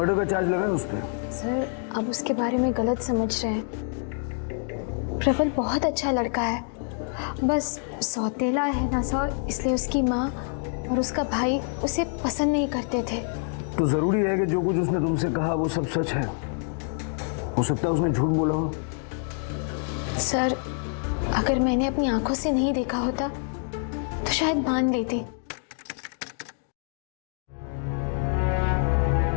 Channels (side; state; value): right; silent; 55 dB below the other